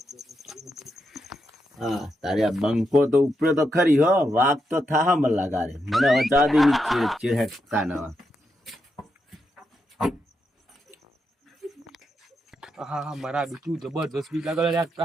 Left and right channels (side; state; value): both; normal; correlation 0.84